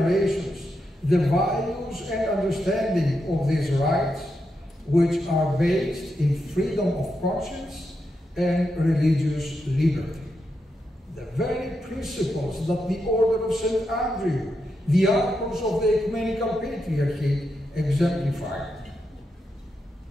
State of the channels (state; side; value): normal; both; correlation 0.85